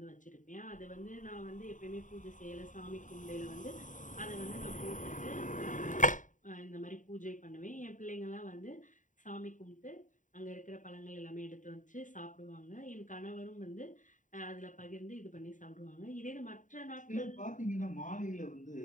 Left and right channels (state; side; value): late; right; 0.37 ms